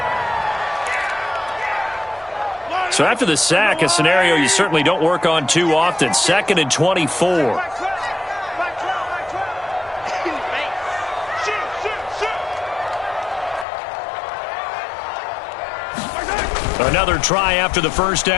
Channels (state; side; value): drops out; right; at 13.7 s